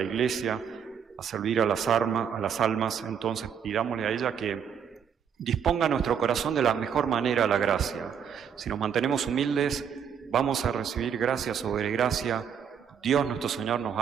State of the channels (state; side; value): quieter; left; 7.8 dB